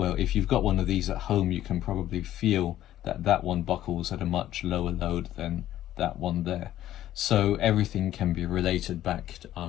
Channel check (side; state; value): right; quieter; 13.1 dB